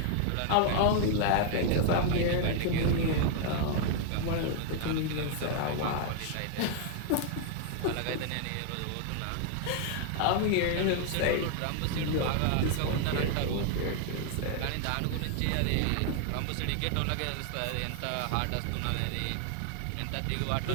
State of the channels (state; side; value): different; both; correlation 0.00